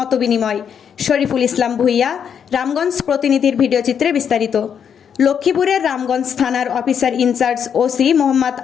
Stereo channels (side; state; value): right; quieter; 7.8 dB